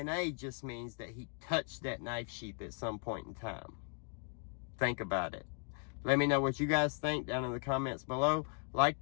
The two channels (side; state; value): right; quieter; 38.5 dB